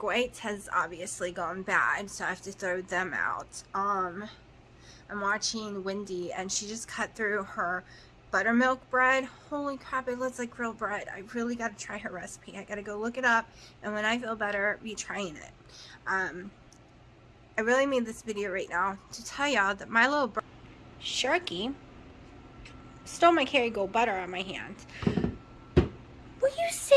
whites has obviously gone bad, so I have to throw them out. I'm watching Wendy, and she just cut through her buttermilk bread. Holy crap, it looks like real bread. I really got to try her recipe. I got to go look it up, and when I feel better, be trying it. I really made this video right now to tell y'all that my little Sharky stole my Kerrygold butter on my hand. Will you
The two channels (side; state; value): both; identical; correlation 1.00